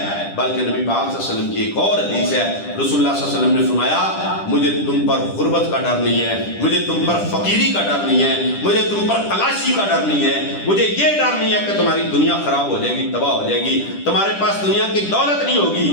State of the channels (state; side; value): late; right; 10 ms